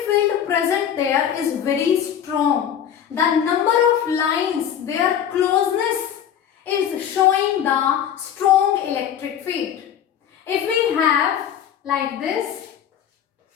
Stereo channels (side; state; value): right; quieter; 9.3 dB